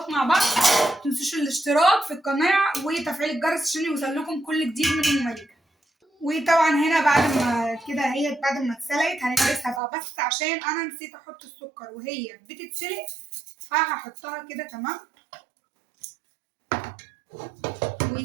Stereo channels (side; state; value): left; drops out; at 9.8 s